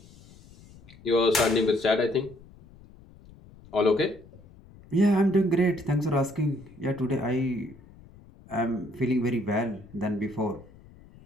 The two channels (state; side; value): noise; left; rumble, 23 dB below the sound